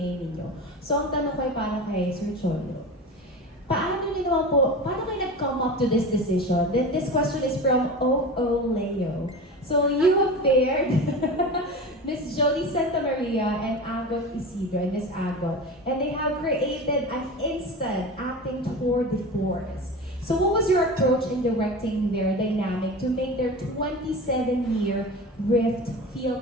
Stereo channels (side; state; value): both; normal; correlation 0.30